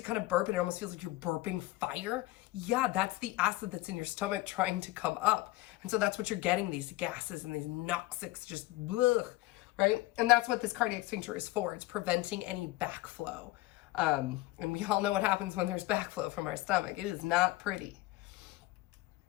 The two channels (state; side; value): quieter; right; 18.4 dB